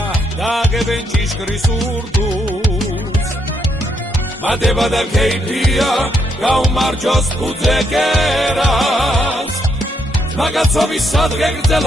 დააგებენ ჭიშკრის ურდუს მადება და ქეიფია გაუმარჯოს ფუძე კერას მაგაცობის სადღე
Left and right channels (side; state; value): both; normal; correlation 0.75